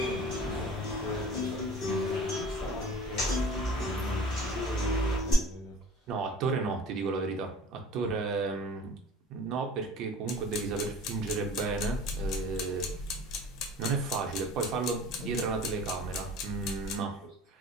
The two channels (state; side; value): normal; both; correlation 0.43